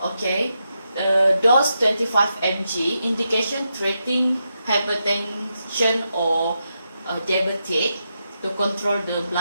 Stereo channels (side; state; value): both; inverted; correlation -0.85